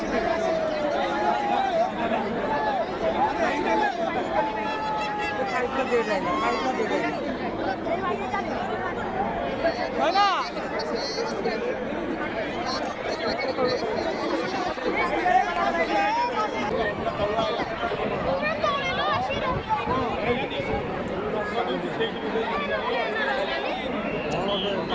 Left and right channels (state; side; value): identical; both; correlation 1.00